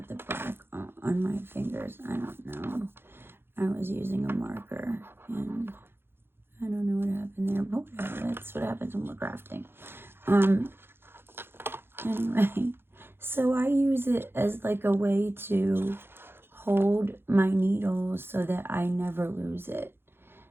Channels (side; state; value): left; late; 0.11 ms